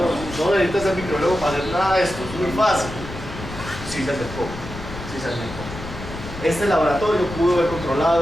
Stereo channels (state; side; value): noise; left; rumble, 11 dB below the sound